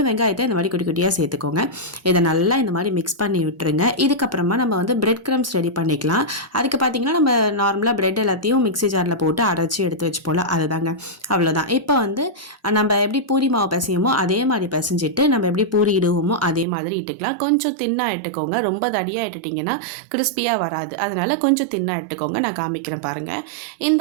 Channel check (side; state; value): left; drops out; at 16.7 s